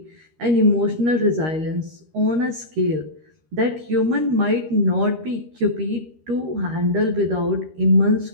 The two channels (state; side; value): late; left; 13 ms